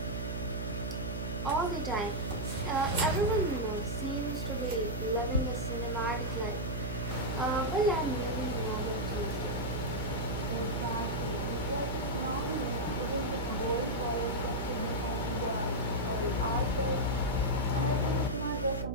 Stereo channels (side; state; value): right; noise; hum, 3 dB below the sound